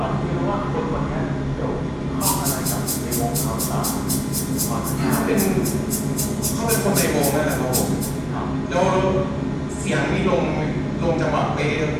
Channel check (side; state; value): both; identical; correlation 1.00